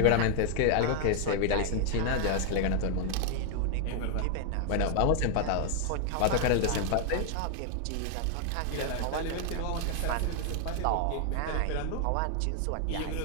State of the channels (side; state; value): both; different; correlation 0.00